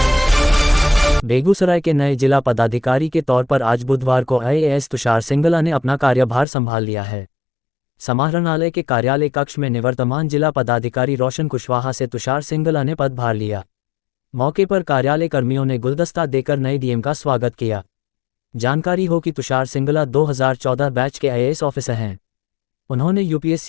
Begusarai के नए जिला पदाधिकारी के तौर पर आज बुधवार को आईएएस तुषार सिंगला ने अपना कार्यभार संभाल लिया है। समाहरणालय के कार्यालय कक्ष में निवर्तमान जिला पदाधिकारी रोशन कुशवाहा से तुषार सिंगला ने पदभार लिया। मौके पर कार्यालय कर्मियों ने गुलदस्ता देकर नए डीएम का स्वागत किया। जानकारी हो कि तुषार सिंगला 2014 बैच के आईएएस ऑफिसर हैं। उन्होंने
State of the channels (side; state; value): right; drops out; at 6.5 s